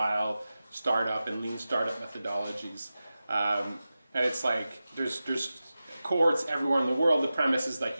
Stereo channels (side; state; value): both; inverted; correlation -0.94